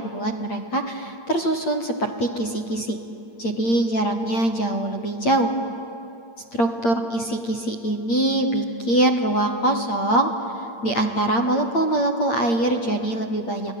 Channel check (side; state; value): right; late; 8.7 ms